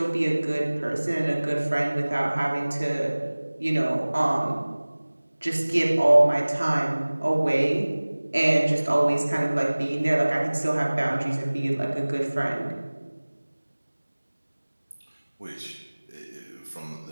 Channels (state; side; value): inverted; both; correlation -1.00